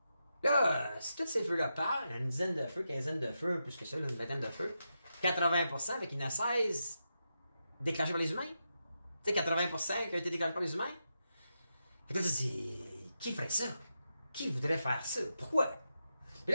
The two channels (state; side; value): inverted; both; correlation -0.87